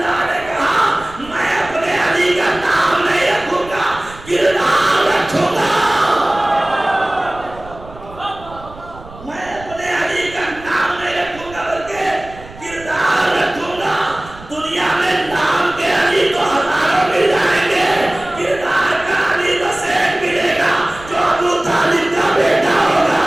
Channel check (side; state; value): right; noise; rumble, 18 dB below the sound